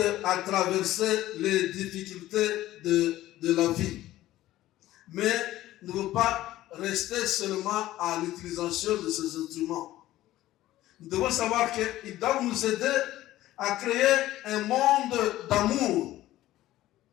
à traverser les difficultés de la vie. Mais ne veut pas rester seulement à l'utilisation de ces instruments. Nous devons savoir qu'ils doivent nous aider à créer un monde d'amour,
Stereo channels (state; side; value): quieter; right; 15.2 dB